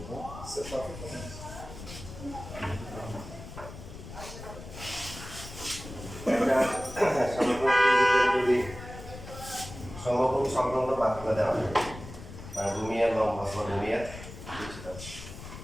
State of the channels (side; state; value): left; noise; rumble, 13 dB below the sound